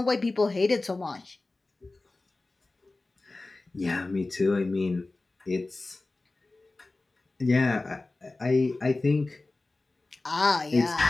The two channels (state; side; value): quieter; right; 3.2 dB